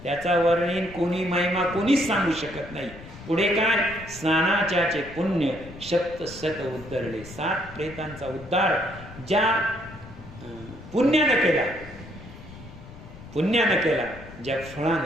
त्याचा वर्णीन कोणी, महिमा कोणीच सांगू शकत नाही. पुढे काय? स्नानाच्याचे पुण्य शक्त सत उद्धरले. 7 प्रेतांचा उद्धार ज्या पुण्यानं केला, ज्या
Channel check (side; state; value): left; noise; rumble, 16 dB below the sound